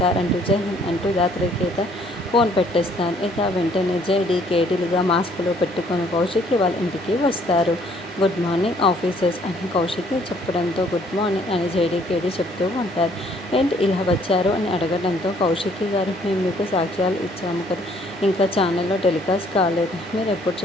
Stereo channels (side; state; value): both; normal; correlation 0.63